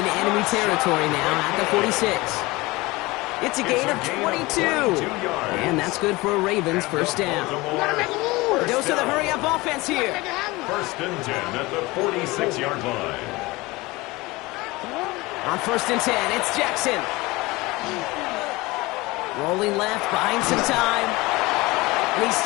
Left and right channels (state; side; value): quieter; right; 21.8 dB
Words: enemy territory now at the 46. It's a gain of 22. And that's good for a Ravens first down. A dose of the hurry-up offense here. 1st and 10 at the 46-yard line. On 1st and 10, it's Jackson. Rolling left, buying some time. And he's